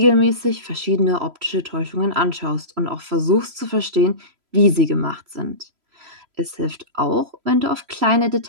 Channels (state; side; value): late; left; 3.0 ms